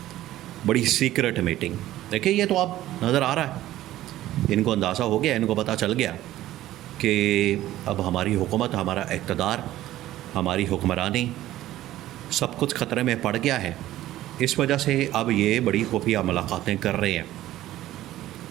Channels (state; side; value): quieter; left; 14.5 dB